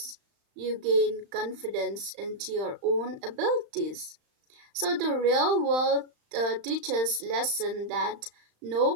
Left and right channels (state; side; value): late; left; 35 ms